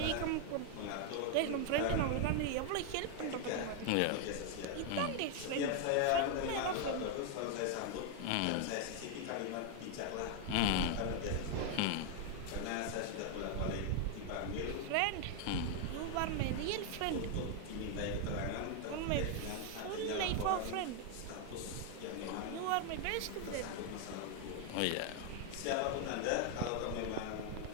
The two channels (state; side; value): different; both; correlation 0.00